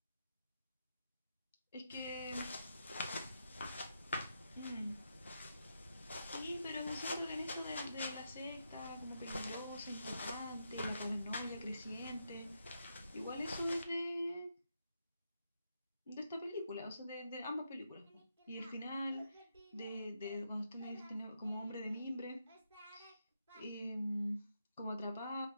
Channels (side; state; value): both; inverted; correlation -0.83